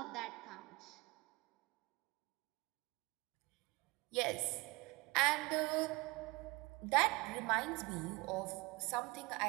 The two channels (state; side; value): quieter; left; 24.0 dB